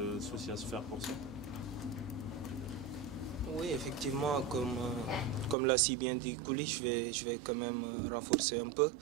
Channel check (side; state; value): left; drops out; at 5.6 s